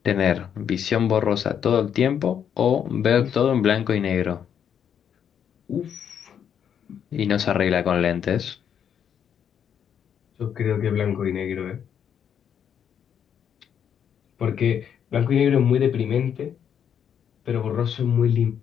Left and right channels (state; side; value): quieter; right; 8.5 dB